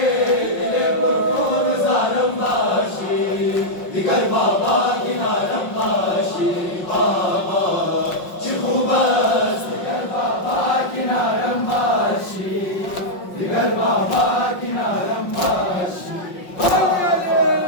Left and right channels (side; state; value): right; late; 5.5 ms